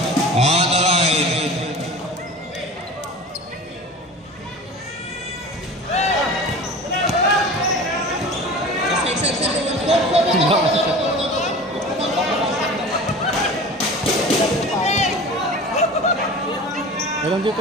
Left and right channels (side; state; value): both; normal; correlation 0.37